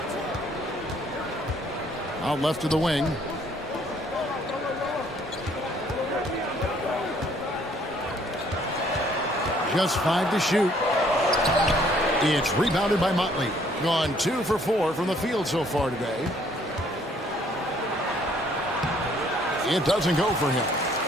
Out left to the wing. Just 5 to shoot. It's rebounded by Motley. Gone 2 for 4 from the field so far today. It doesn't go for him.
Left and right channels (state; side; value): normal; both; correlation 0.63